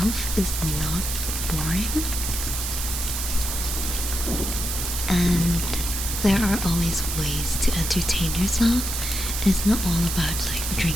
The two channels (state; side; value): noise; right; hiss, 3 dB below the sound